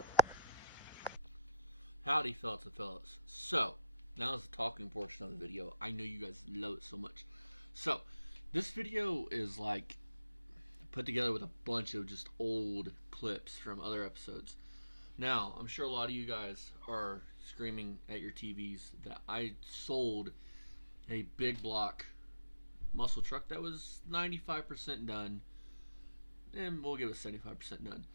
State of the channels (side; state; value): both; inverted; correlation -0.80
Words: Howdy, fellas and fellas. So, now is the talking portion of the video. I know you guys love it so much. So, this video is like put together with a bunch of just old clips from other episodes. Now, I'm sure a lot of you guys are screaming at your TVs that I sold a big block muscle truck that was 95% done, and we'll give it 75% done,